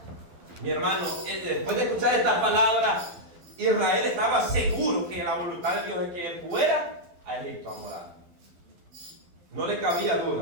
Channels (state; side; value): late; left; 12 ms